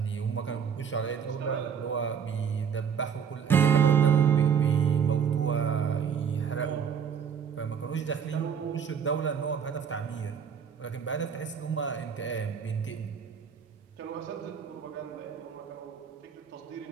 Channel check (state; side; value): quieter; left; 7.2 dB